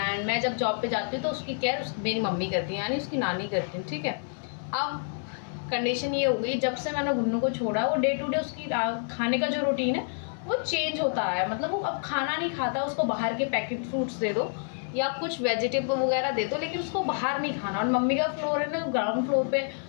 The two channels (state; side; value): silent; right; 59 dB below the other